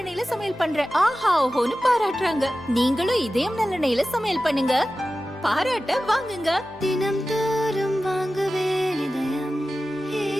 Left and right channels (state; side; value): normal; both; correlation 0.94